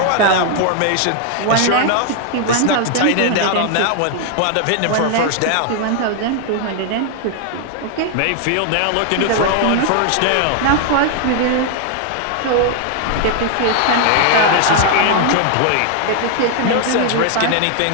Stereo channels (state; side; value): different; both; correlation 0.00